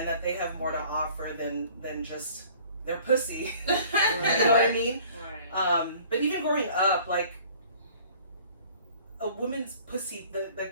that they have more to offer than just their pussy. You Right. know what I mean? Right. But even growing up, like a woman's pussy, the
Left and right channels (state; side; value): inverted; both; correlation -0.51